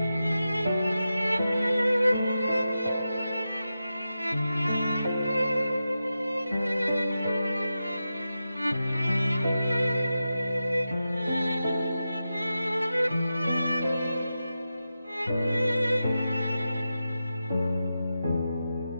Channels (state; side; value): inverted; both; correlation -0.91